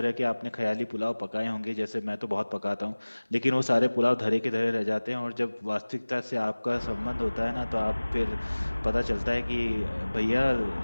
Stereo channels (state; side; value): inverted; both; correlation -1.00